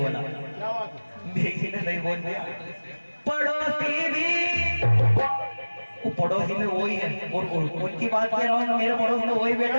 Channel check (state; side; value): inverted; both; correlation -1.00